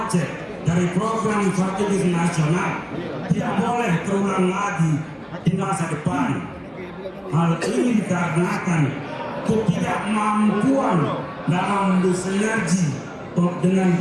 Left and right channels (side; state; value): both; identical; correlation 1.00